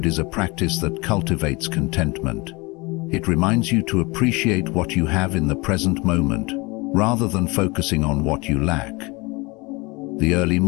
is a practice that cultivates contentment. It reminds you to appreciate what you have in the present moment, rather than focusing on what you lack. The early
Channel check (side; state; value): right; quieter; 25.3 dB